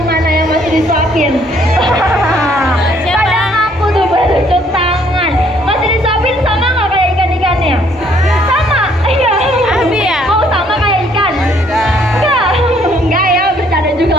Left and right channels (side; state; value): both; normal; correlation 0.64